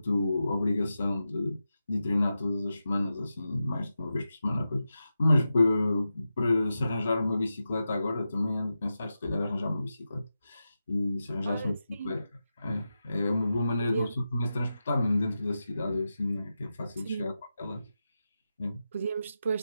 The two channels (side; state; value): both; inverted; correlation -0.91